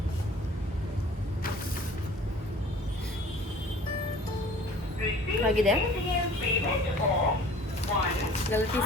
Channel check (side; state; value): both; normal; correlation 0.48